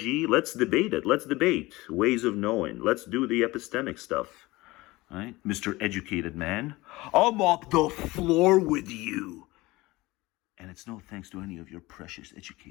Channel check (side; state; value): right; quieter; 20.6 dB